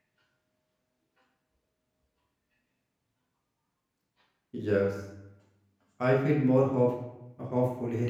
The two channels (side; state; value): both; identical; correlation 1.00